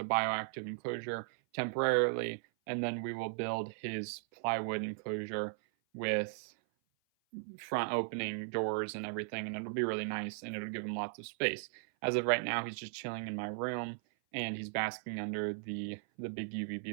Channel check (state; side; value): silent; left; 53 dB below the other